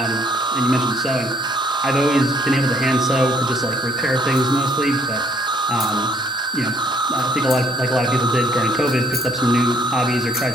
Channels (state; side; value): normal; both; correlation 0.64